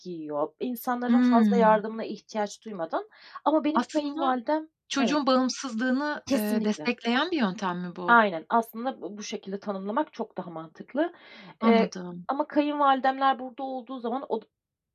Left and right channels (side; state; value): both; identical; correlation 1.00